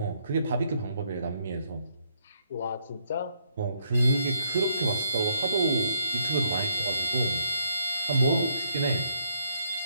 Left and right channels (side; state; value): both; inverted; correlation -0.72